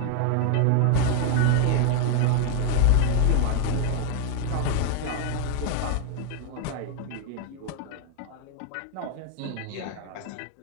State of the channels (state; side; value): different; both; correlation 0.00